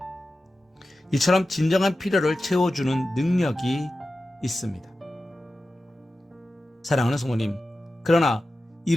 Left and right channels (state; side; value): normal; both; correlation 0.93